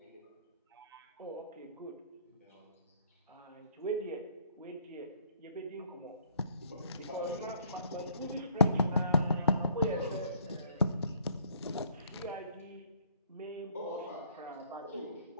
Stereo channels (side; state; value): both; inverted; correlation -0.62